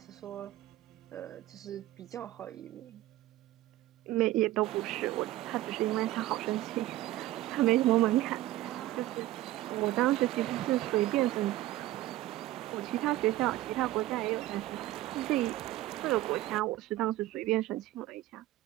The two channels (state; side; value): quieter; left; 15.8 dB